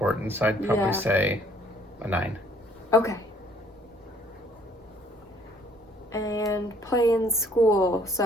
so I'd probably say a 9. Okay. And play in school,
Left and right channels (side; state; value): both; normal; correlation 0.60